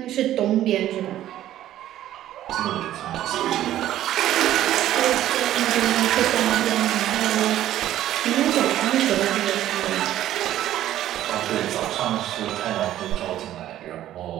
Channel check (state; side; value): quieter; left; 12.8 dB